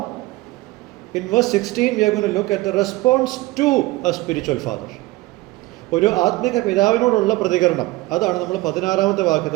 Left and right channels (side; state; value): left; quieter; 19.9 dB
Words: in verse 16 we are going to look at the response to a spiritual father. ഒരു ആത്മിക പിതാവിനോടുള്ള പ്രതികരണം, അതാണ് നമ്മൾ 16-ാമത്തെ